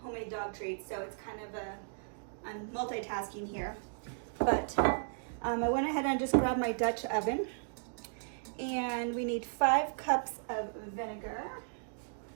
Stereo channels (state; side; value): silent; left; digital silence